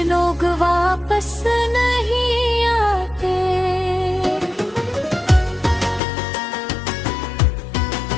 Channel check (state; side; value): drops out; right; at 6.0 s